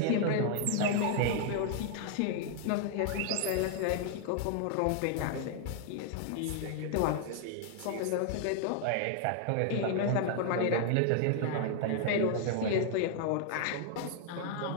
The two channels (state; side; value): different; both; correlation 0.00